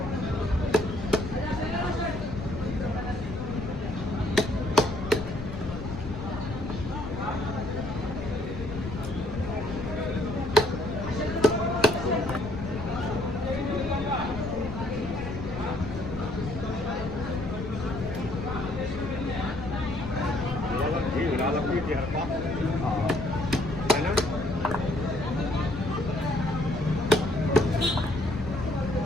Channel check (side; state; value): left; noise; rumble, 9 dB below the sound